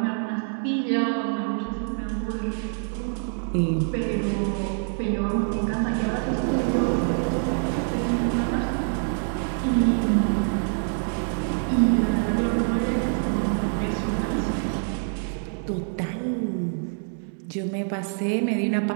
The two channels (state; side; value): silent; left; 61 dB below the other